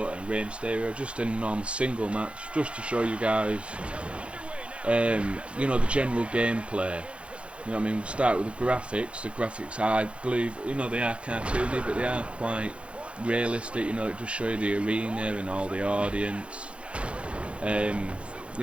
and Rey Mysterio, just in a normal single match, just to show you guys, you know, the general gameplay. You know what I mean? We'll start with the graphics. The graphics, I believe, you know, they are cartoony, but they are quite realistic. You know, it just show you the arena and all the audience. You know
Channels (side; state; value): left; late; 0.060 ms